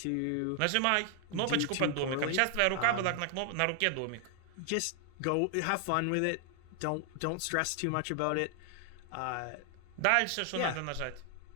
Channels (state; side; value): different; both; correlation 0.00